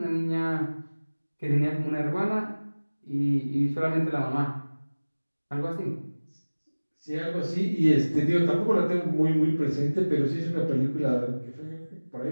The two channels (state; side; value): inverted; both; correlation -1.00